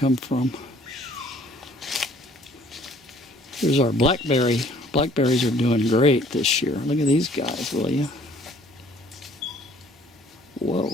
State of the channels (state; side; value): normal; both; correlation 0.57